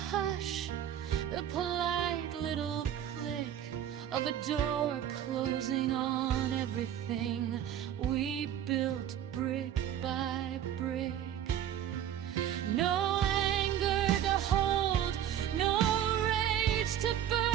the polite little click of a door closing on everything we built brick by brick. No anger to hold, no rage to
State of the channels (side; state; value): left; quieter; 10.4 dB